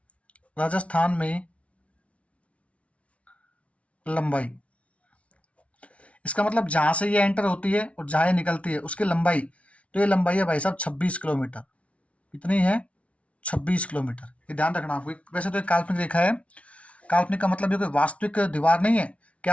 राजस्थान में लंबाई। इसका मतलब जहां से ये एंटर होती है और जहां ये निकलती है उसकी लंबाई, तो ये लंबाई है भाई साहब 26 किलोमीटर। कितनी है, 26 किलोमीटर। ये ध्यान रखना आपको। वैसे तो एक काल्पनिक रेखा है, काल्पनिक का मतलब ये कोई वास्तविक दीवार नहीं है कि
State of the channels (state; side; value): late; right; 0.063 ms